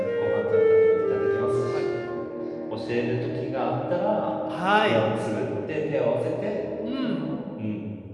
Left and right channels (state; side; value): identical; both; correlation 1.00